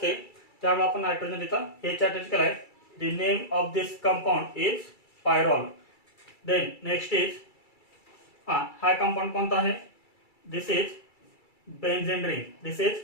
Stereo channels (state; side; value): late; right; 2.3 ms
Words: त्यामुळे आपण नायट्रोजन इथं H अटॅच केलाय. The name of this compound is pyrrole. Then next is हा कंपाऊंड कोणता आहे this is benzene ring.